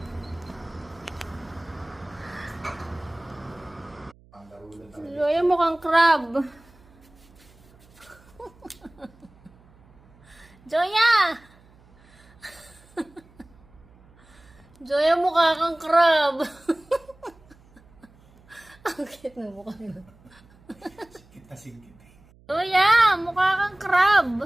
Joya mukhang crab. Joya! Joya mukha kang crab. Ang cute na mukha mo. Sikit na sikit. Joya, mukha kang crab.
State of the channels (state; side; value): noise; right; hum, 27 dB below the sound